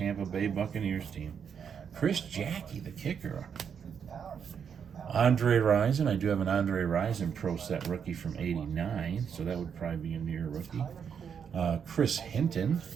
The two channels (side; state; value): left; quieter; 7.3 dB